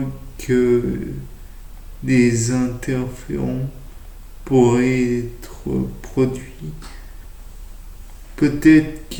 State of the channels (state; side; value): identical; both; correlation 1.00